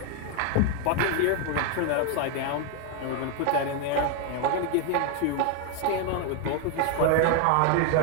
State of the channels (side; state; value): both; different; correlation 0.01